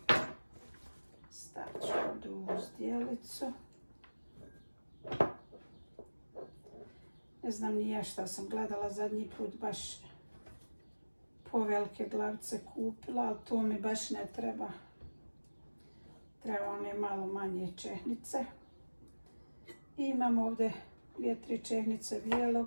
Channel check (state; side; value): inverted; both; correlation -1.00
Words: Stavit ću ovdje u zdjelicu. Ne znam ni ja šta sam gledala zadnji put, baš povelike glavice kupila, ali to mi baš ne treba. Treba one malo manje čehnice. I imam ovdje 2-3 čehnice